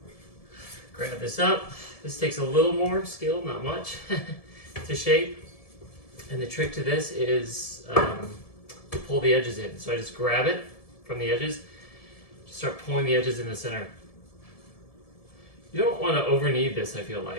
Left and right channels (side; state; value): right; late; 1.7 ms